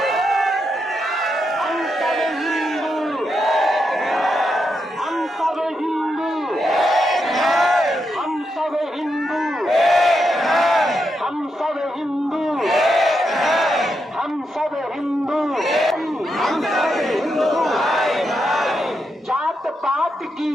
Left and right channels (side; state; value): both; normal; correlation 0.84